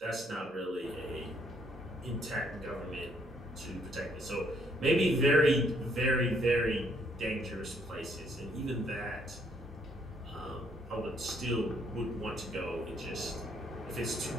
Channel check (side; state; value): both; normal; correlation 0.68